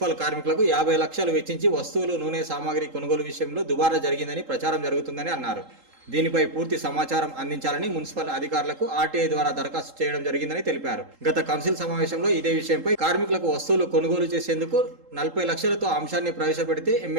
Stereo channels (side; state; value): left; late; 3.8 ms